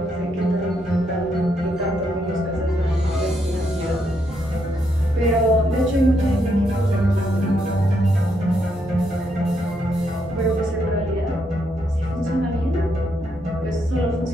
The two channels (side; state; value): both; normal; correlation 0.77